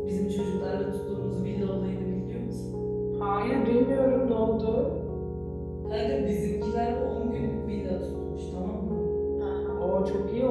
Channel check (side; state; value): both; identical; correlation 1.00